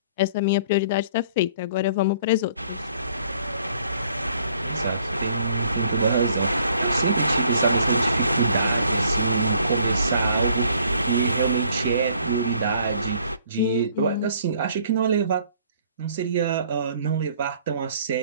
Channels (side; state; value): both; inverted; correlation -0.60